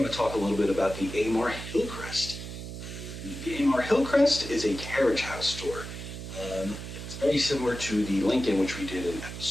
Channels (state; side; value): noise; right; hum, 9 dB below the sound